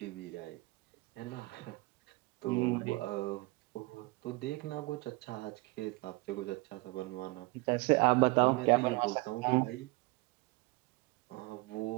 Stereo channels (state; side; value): quieter; left; 23.9 dB